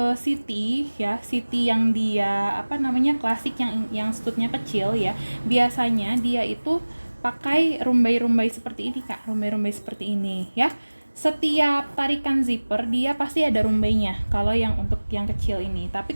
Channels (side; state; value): both; inverted; correlation -1.00